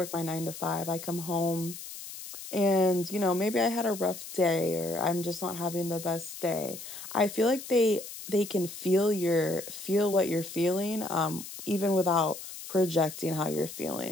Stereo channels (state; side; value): noise; left; hiss, 11 dB below the sound